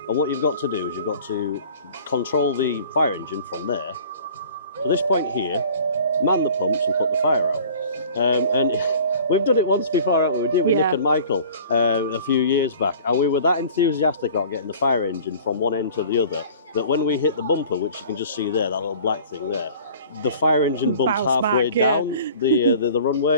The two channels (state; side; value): inverted; both; correlation -0.47